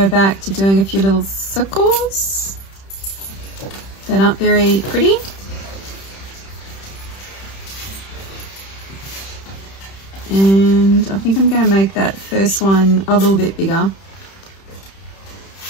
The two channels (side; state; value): right; late; 31 ms